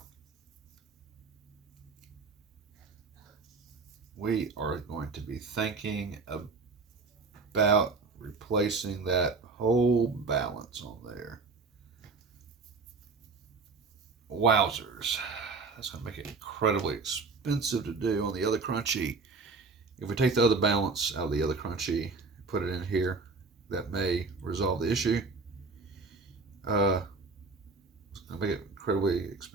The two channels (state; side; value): quieter; left; 4.2 dB